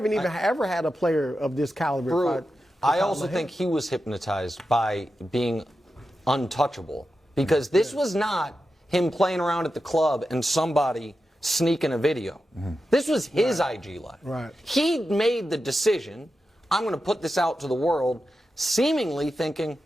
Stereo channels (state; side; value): normal; both; correlation 0.90